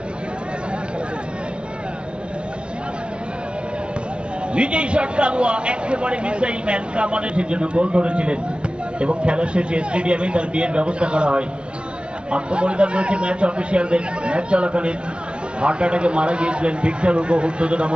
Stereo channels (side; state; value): left; late; 0.057 ms